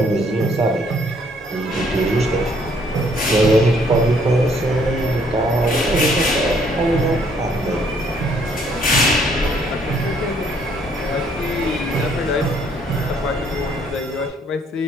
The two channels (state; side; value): normal; both; correlation 0.65